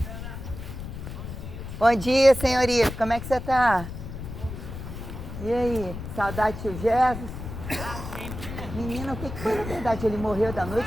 Bom dia, senhorita. Como é que você tá? E aí? Saudade do tio Jesus? Menina, o que foi na verdade? Ele morreu da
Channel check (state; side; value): noise; left; rumble, 9 dB below the sound